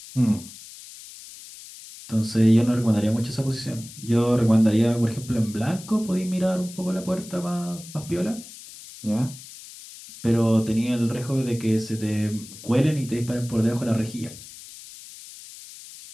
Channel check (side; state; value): left; noise; hiss, 16 dB below the sound